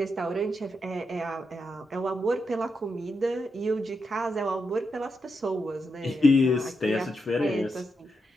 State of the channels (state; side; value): normal; both; correlation 0.84